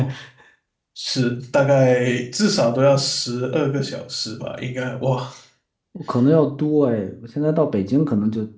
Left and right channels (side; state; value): both; identical; correlation 1.00